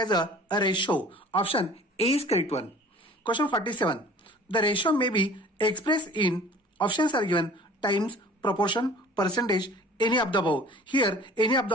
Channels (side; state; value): both; normal; correlation 0.47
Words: a ratio. Option A is correct one. Question 47. The ratio may be expressed in options are given times, proportion, percentage, any of the above. Here, any of